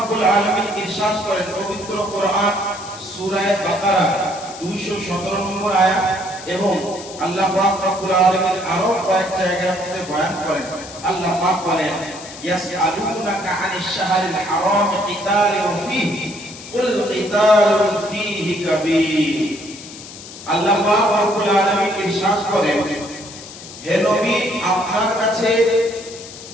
আলামিন ইরশাদ করেন পবিত্র কোরআন সূরা বাকারা 217 নম্বর আয়াত, এবং আল্লাহ পাক রব্বুল আলামিন আরো কয়েক জায়গার মধ্যে বয়ান করেন। আল্লাহ পাক বলেন ইয়াসআলুনাকা আনিশ শাহরিল হারাম কিতালুন ফীহি কুল কিতালুন ফীহি কাবীর। আল্লাহ পাক রব্বুল আলামিন ইরশাদ করেন, হে নবী, আপনার কাছে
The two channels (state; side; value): noise; left; hiss, 15 dB below the sound